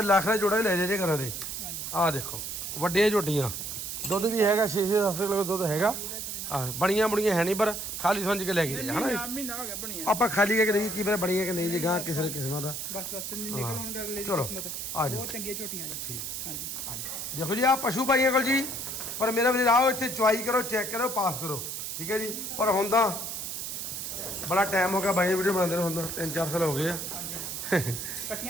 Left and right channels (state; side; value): noise; right; hiss, 5 dB below the sound